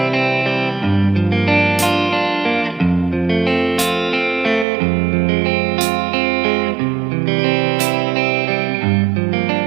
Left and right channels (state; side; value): drops out; left; at 4.7 s